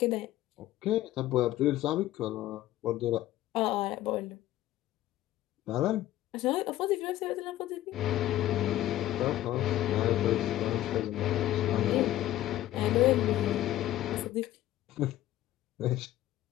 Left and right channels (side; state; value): right; quieter; 14.2 dB